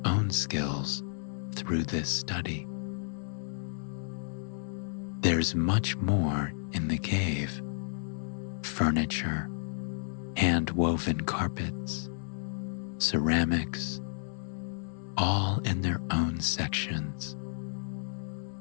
own skills through this study. There's much more in the cave: furniture, hand-woven carpets, ceramics, all in their own sections.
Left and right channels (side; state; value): right; silent; 56 dB below the other